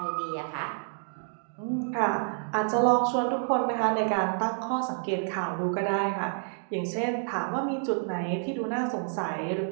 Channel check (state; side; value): silent; left; digital silence